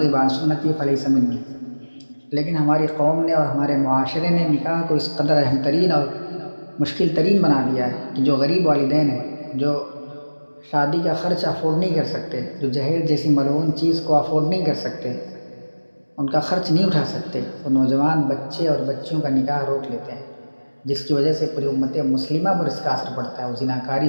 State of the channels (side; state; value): both; inverted; correlation -1.00